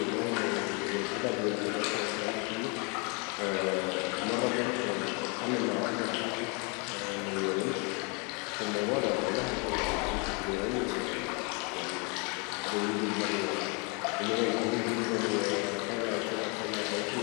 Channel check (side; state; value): right; quieter; 32.9 dB